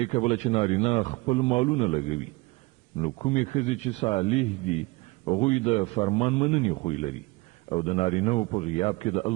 کبله چې نارینه خپل مالونه لګوي نو کومې ښځې چې صالح دي هغوی د فرمان مننې خوی لري او د نارینهو په غیاب کې د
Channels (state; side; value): quieter; left; 24.1 dB